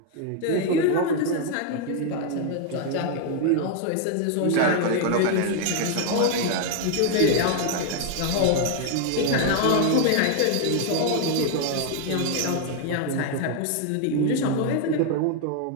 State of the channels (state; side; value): different; both; correlation 0.00